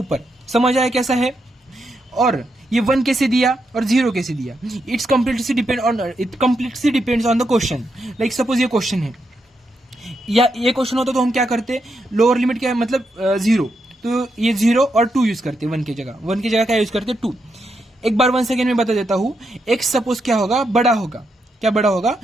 समझ आया कैसा है। और ये 1 कैसे दिया और 0 कैसे दिया, it completely depends on the question. Suppose ये क्वेश्चन है, या ये क्वेश्चन होता तो हम क्या करते, लोअर लिमिट क्या है मतलब 0, तो ये 0 और 2 यूज करते, 1 की जगह क्या यूज करते, 2। एक बार 1 सेकेंड में बता देता हूं, x सपोज क्या होगा, बड़ा होगा, बड़ा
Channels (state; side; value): normal; both; correlation 0.82